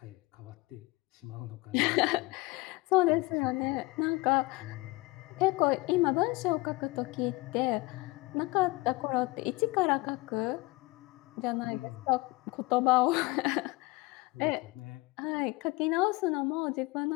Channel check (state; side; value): quieter; right; 22.6 dB